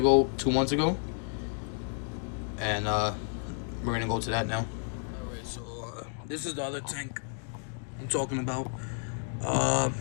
2 months ago, and we're gonna go to that now. Alright, so this is the other tank I'm talking about.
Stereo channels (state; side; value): silent; right; 57 dB below the other